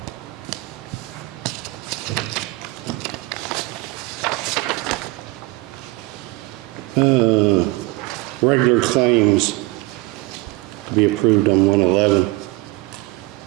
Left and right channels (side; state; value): left; quieter; 22.4 dB